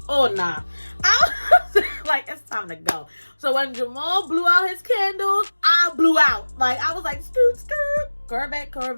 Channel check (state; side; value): inverted; both; correlation -1.00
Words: Oh, nah. I was like, it's time to go. So when Jamal blew out his candles, I blew out. Like, I was like, scoot, scoot,